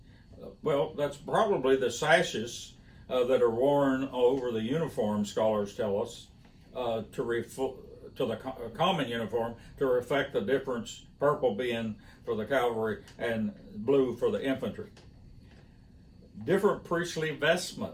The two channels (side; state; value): both; identical; correlation 1.00